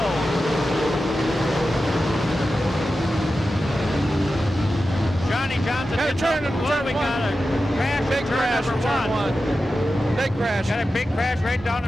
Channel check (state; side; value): normal; both; correlation 0.92